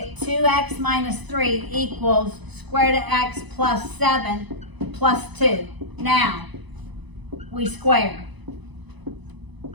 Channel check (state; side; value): late; left; 1.0 ms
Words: 2x minus 3 equals square root of x plus 7 plus 2. Now, we square.